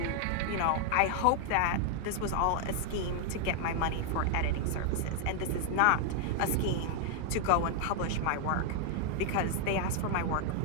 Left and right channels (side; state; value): both; different; correlation 0.00